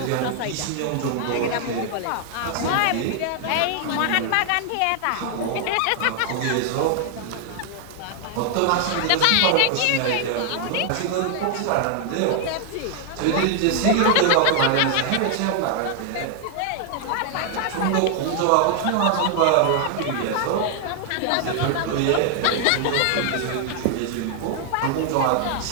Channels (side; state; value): both; different; correlation 0.00